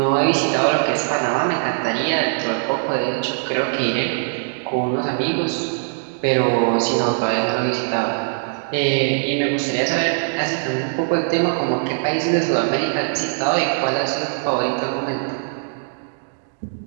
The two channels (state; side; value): silent; left; digital silence